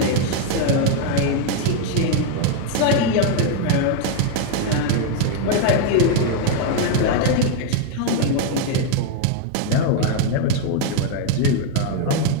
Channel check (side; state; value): both; different; correlation 0.00